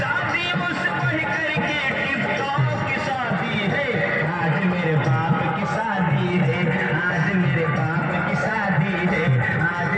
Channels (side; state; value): both; identical; correlation 1.00